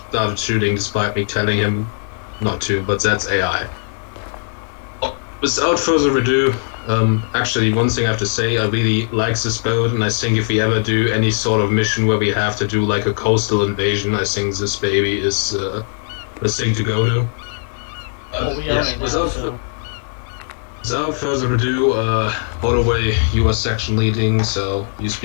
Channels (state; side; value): silent; right; digital silence